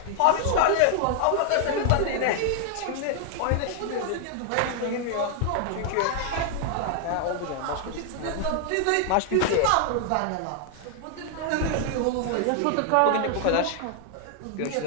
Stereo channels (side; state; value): both; different; correlation 0.00